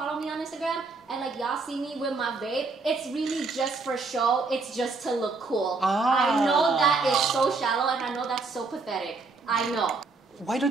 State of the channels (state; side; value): quieter; left; 4.0 dB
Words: me on Instagram, and like y'all see me with my vape, it's really just for show, it's just to look cool. I know that is so shallow, and I know that's so pathetic. I know. Why don't